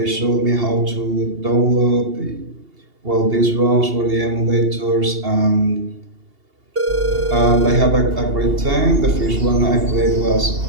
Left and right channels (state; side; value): late; left; 2.8 ms